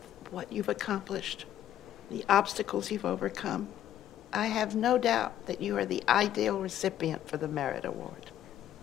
what you've accomplished, the obstacles you've overcome, I have no doubt that you are the ideal recipient for the Merit Award.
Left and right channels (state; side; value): quieter; right; 11.6 dB